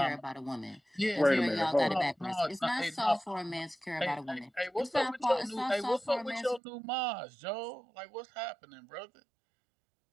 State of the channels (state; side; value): drops out; left; at 6.6 s